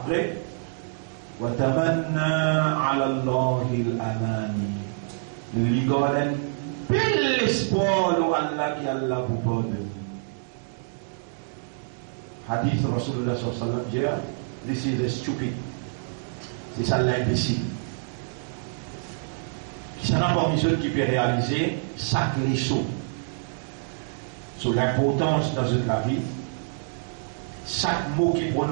watamanna ala Allahi al-amani. Lui garde bel espoir de Allah qui Allah vous pardonne. Hadith Rasulullah sallallahu alayhi wa sallam, this is a stupid. C'est ça l'imbécile. Qui n'a pas besoin qui peut réaliser chaque leçon sur l'importance dans la vie. Chaque mot qui est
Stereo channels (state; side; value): silent; left; digital silence